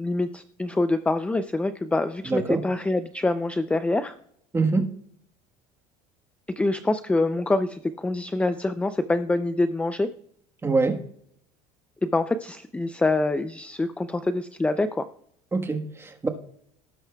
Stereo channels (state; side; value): normal; both; correlation 0.89